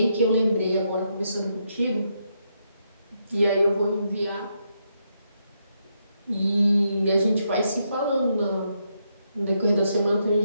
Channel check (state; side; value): inverted; both; correlation -0.79